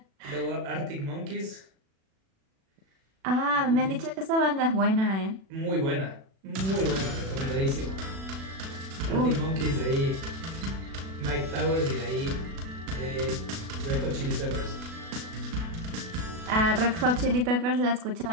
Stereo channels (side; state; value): left; late; 36 ms